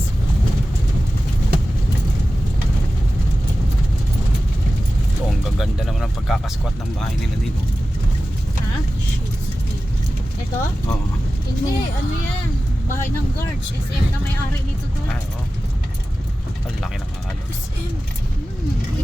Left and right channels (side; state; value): both; normal; correlation 0.95